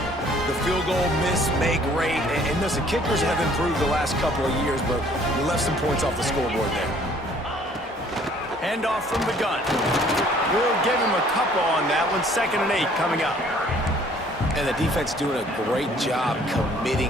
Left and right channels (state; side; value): normal; both; correlation 0.58